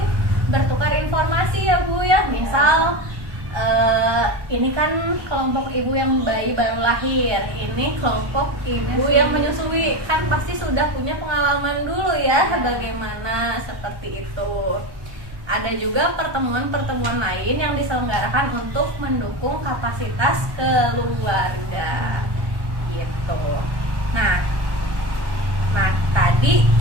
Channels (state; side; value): late; left; 1.1 ms